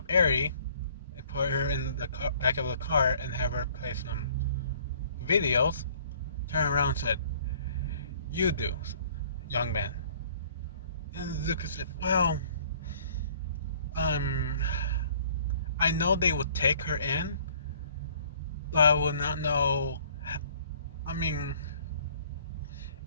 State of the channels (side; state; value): both; inverted; correlation -0.56